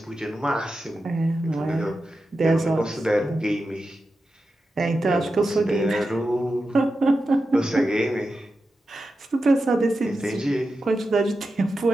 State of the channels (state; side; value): normal; both; correlation 0.90